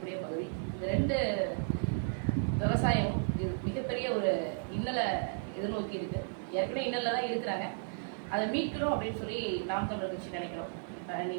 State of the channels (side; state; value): left; silent; digital silence